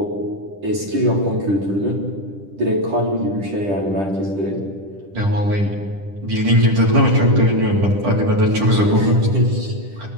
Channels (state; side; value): late; left; 10 ms